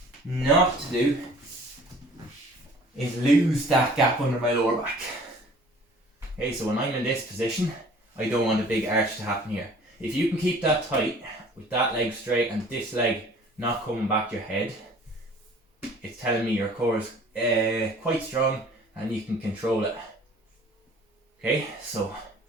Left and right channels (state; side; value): normal; both; correlation 0.50